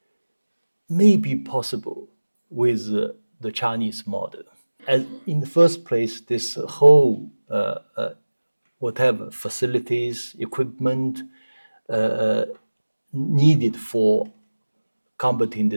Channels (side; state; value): both; inverted; correlation -1.00